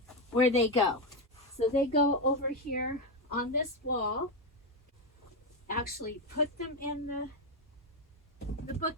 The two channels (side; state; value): both; normal; correlation 0.09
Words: where they go. So they go over here on this wall. Actually put them in the